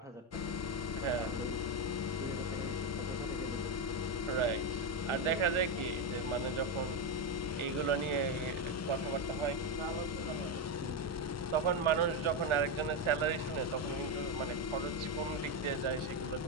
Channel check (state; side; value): normal; both; correlation 0.08